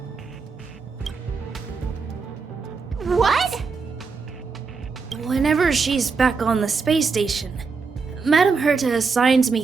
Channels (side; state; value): left; quieter; 4.8 dB